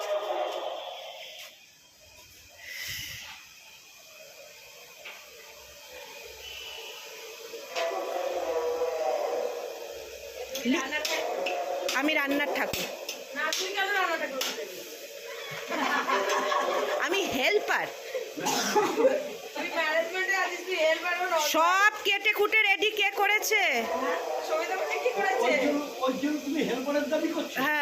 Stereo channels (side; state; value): both; identical; correlation 1.00